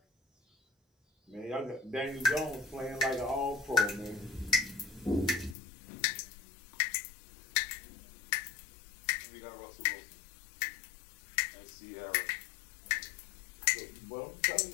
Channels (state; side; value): drops out; right; at 5.6 s